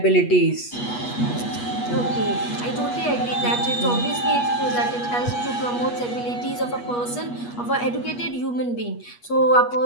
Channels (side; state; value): right; late; 8.3 ms